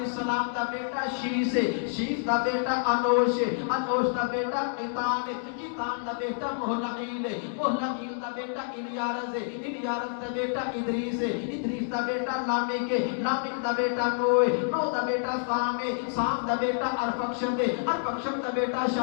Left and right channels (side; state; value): right; silent; digital silence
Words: دا بیٹا شیس ہے، شیس دا بیٹا انوش ہے، انوش دا بیٹا قیطان ہے، قیطان دا بیٹا مہلعیل ہے، مہلعیل دا بیٹا الیارز ہے، الیارز دا بیٹا ادریس ہے، ادریس دا بیٹا لامک ہے، لامک دا بیٹا نوح ہے، نوح دا بیٹا سام ہے، سام دا بیٹا ارفکشد ہے، ارفکشد دا بیٹا